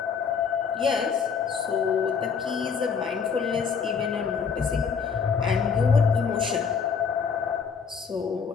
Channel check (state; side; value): quieter; right; 6.1 dB